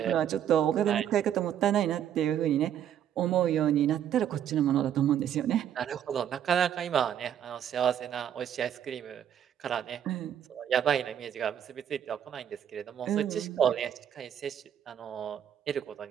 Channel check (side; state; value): left; quieter; 9.8 dB